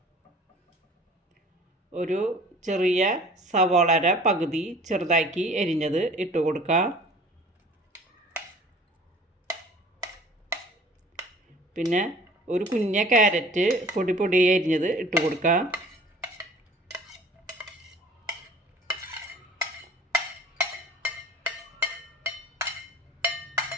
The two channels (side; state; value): both; normal; correlation 0.48